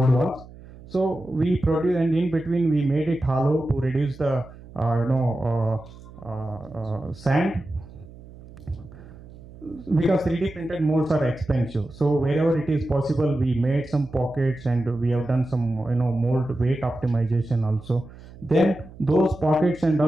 walls. So we produce, and in between we made it hollow to reduce the sand, because 3D printed molds are expensive. So wherever it is possible, we made some pockets, and we have done some mold weight optimization also. Then those pockets and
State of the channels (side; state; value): right; noise; hum, 19 dB below the sound